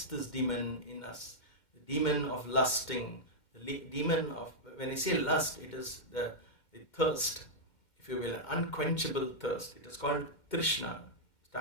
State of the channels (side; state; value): right; late; 2.1 ms